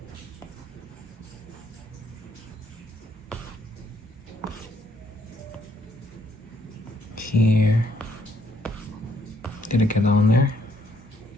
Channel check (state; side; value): normal; both; correlation 0.70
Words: Here. Did I get that one there?